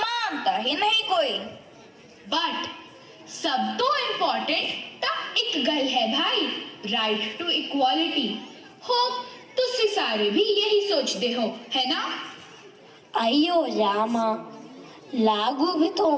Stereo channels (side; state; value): both; identical; correlation 1.00